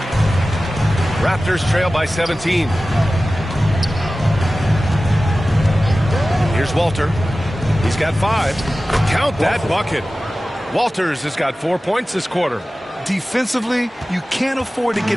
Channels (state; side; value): normal; both; correlation 0.96